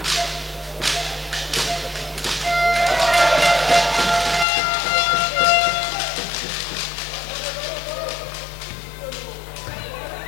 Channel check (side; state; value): right; drops out; at 4.5 s